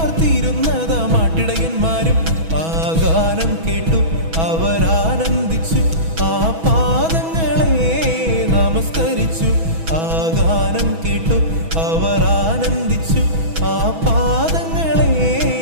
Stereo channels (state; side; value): late; left; 6.1 ms